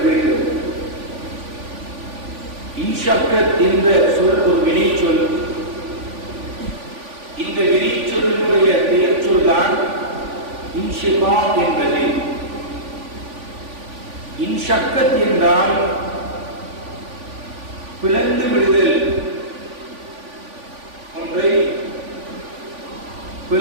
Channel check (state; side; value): late; left; 3.5 ms